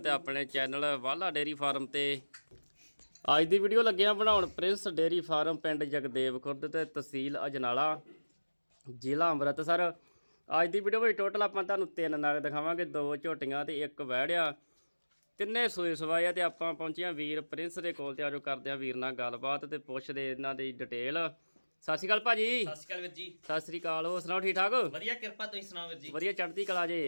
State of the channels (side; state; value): both; inverted; correlation -1.00